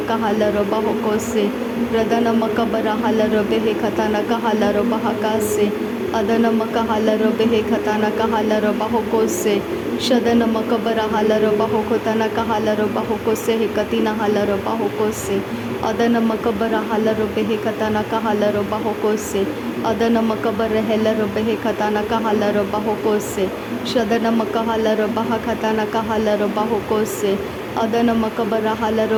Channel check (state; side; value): identical; both; correlation 1.00